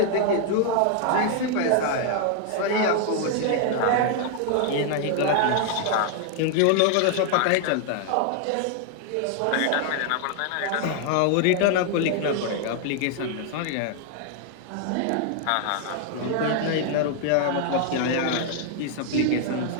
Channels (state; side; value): different; both; correlation 0.00